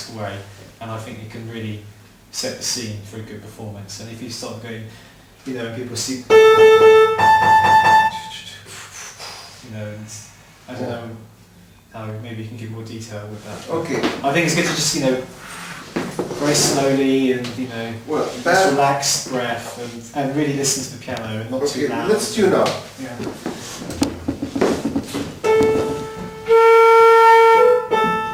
way, and I think you can really set the scene for a good performance. And if you start going, and people see, and I don't know how maybe you can give more detail with that. Okay. I think it's good to just very slowly and just relaxed breath and really listen to the piano and not too loud. Let's tune up. Yeah.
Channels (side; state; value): both; identical; correlation 1.00